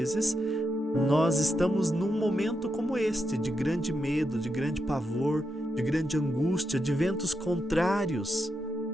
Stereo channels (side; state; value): both; normal; correlation 0.85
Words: nós estamos num momento como este, de grande medo, de grande pavor, de grande angústia, de ventos contrários.